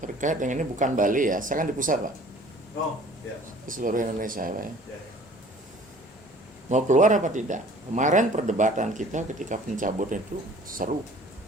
terkait dengan ini bukan Bali ya, saya kan di pusat Pak, Oh, ya. di seluruh Indonesia Pak ya. Ya. Mau keluar apa tidak? Kemarin perdebatan kita ketika pencabutan itu seru.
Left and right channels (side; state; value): both; normal; correlation 0.50